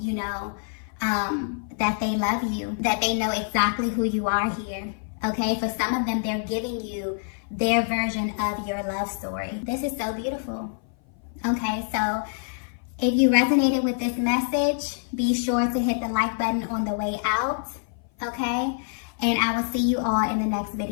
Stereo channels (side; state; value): right; silent; 57 dB below the other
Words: know, that they love you, that they know exactly who you are here. Okay, for some of them, they're giving you their version of your love story. This is so beautiful. Okay, so if you resonated with this message, be sure to hit the like button on the way out. Okay, and I will see you all in the next